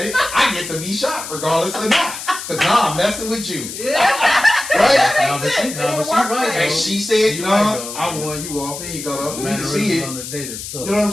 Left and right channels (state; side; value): noise; left; hiss, 9 dB below the sound